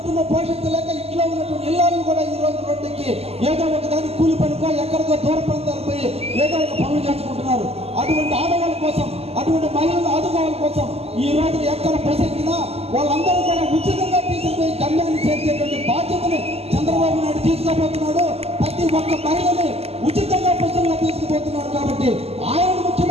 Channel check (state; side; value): late; left; 0.29 ms